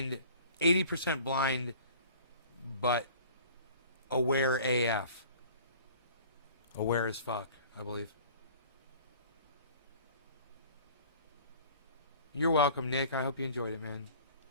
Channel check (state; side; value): inverted; both; correlation -0.47